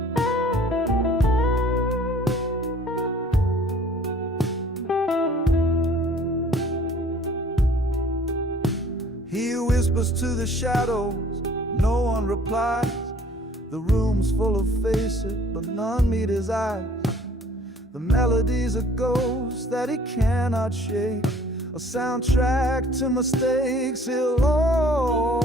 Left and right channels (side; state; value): both; normal; correlation 0.53